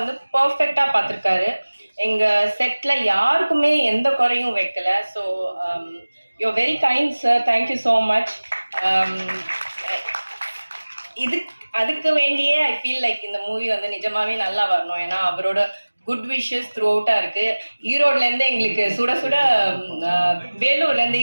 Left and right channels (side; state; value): both; inverted; correlation -1.00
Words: பர்ஃபெக்டாக பார்த்துருக்காரு. எங்கள் செட்டில் யாருக்குமே எந்த குறையும் வைக்கலை. So you very kind sir, thank you so much. அதுக்கு வேண்டியே ஐ ஃபீல் லைக் இந்த மூவி வந்து நிஜமாகவே நல்லா வரணும். ஏன்னா அவரோட குட் விஷஸ் த்ரூ அவுட்டாக இருக்குது. ஈரோட்லேருந்து எங்களுக்கு சுட சுட, வேலூர்லேருந்து